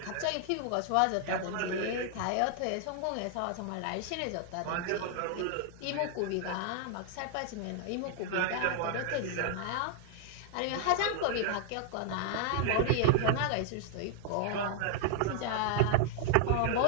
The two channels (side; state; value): both; different; correlation 0.00